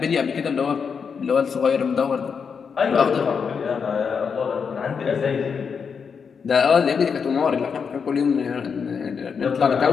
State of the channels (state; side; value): quieter; right; 6.2 dB